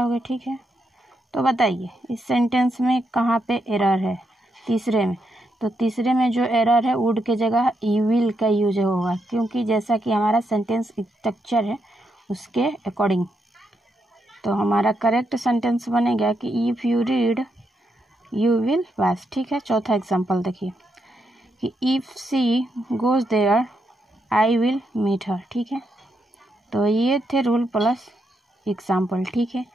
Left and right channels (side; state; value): both; normal; correlation 0.81